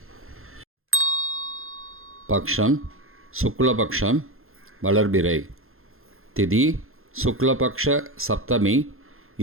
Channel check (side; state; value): left; late; 0.61 ms